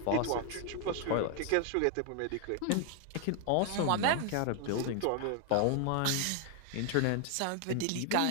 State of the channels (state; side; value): different; both; correlation 0.00